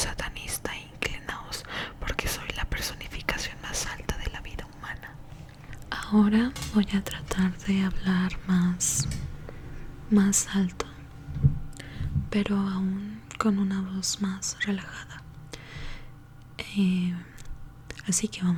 inclinaos, porque soy la personificación más alta de la vida humana. Ahora voy a tratar de hablar más alto, pero aún con una voz más relajada. Así que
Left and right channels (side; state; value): both; identical; correlation 1.00